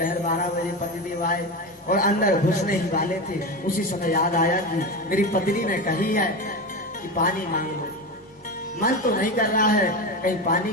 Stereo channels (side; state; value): both; normal; correlation 0.21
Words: 12 बजे पतिदेव आए और अंदर घुसने ही वाले थे। उसी समय याद आया कि मेरी पत्नी ने कही है कि पानी मांग लो। मन तो नहीं कर रहा है कहीं पानी